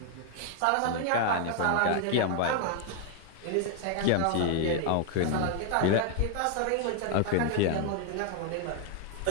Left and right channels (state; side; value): different; both; correlation 0.00